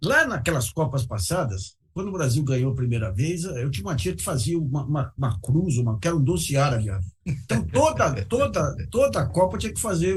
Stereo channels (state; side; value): identical; both; correlation 1.00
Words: Lá naquelas Copas passadas, quando o Brasil ganhou a primeira vez, eu tinha uma tia que fazia uma cruz, que era um doce árabe. Então, toda a Copa tinha que fazer